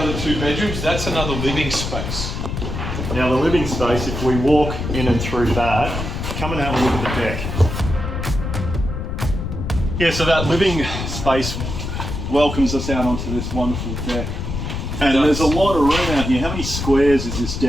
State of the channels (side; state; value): left; noise; rumble, 5 dB below the sound